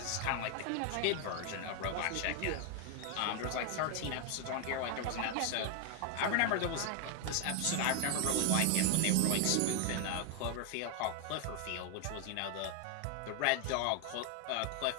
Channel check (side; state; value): both; different; correlation 0.01